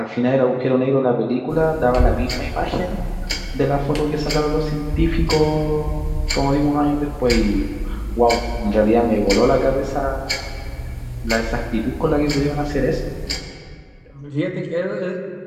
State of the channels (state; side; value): identical; both; correlation 1.00